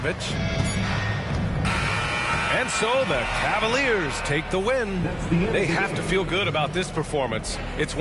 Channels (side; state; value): both; identical; correlation 1.00